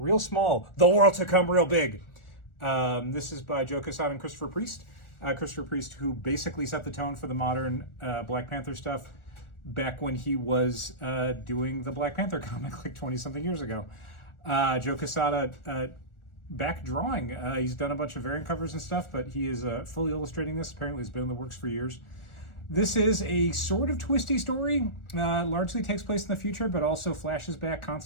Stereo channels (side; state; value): right; late; 1.4 ms